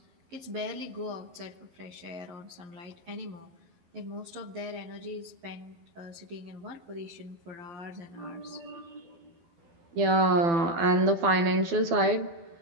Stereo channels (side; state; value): left; late; 12 ms